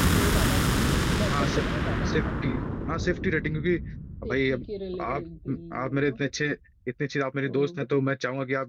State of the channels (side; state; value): both; identical; correlation 1.00